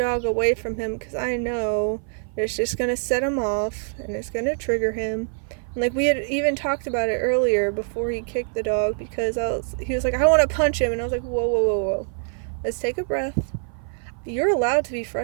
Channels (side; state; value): left; silent; 57 dB below the other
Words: away from him, because I know that it's just going to set him off and it's going to trigger him. And like we had even talked about it earlier before he kicked the dog, because he was like, I want to punch him, and I was like, whoa, let's take a breath. You're allowed to be